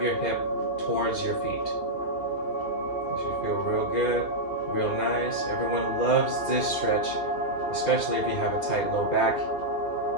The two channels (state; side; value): late; right; 2.8 ms